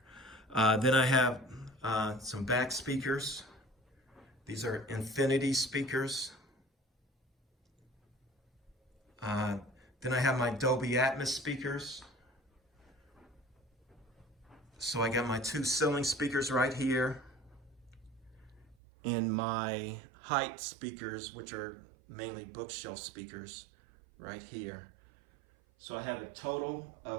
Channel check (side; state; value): left; drops out; at 18.8 s